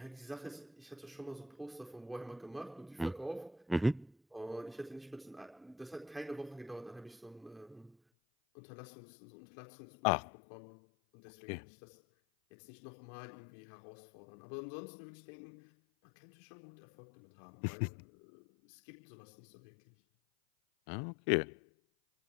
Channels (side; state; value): right; drops out; at 8.0 s